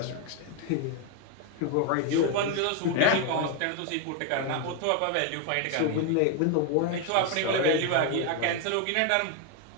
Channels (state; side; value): different; both; correlation 0.01